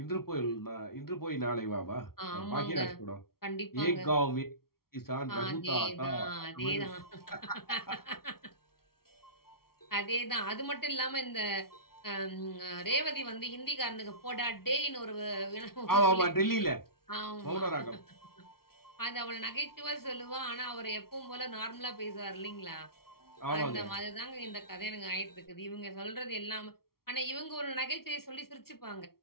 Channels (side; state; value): right; late; 0.94 ms